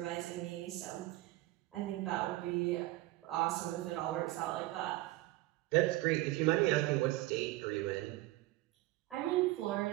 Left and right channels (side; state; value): left; quieter; 18.3 dB